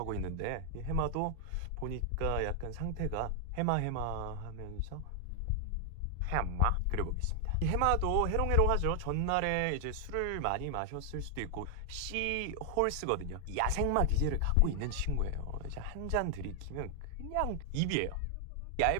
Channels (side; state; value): both; different; correlation 0.00